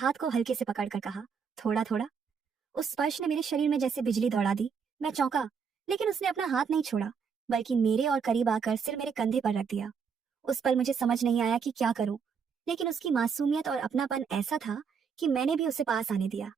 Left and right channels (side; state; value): left; quieter; 6.3 dB